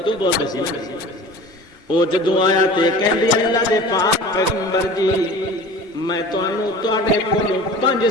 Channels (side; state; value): both; normal; correlation 0.40